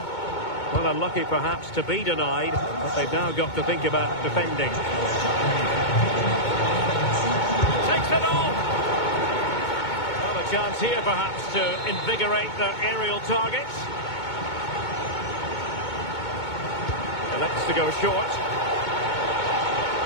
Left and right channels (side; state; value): right; late; 2.2 ms